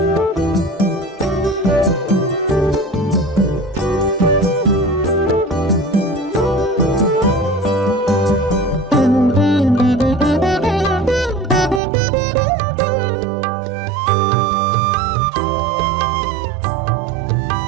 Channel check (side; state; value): left; drops out; at 11.8 s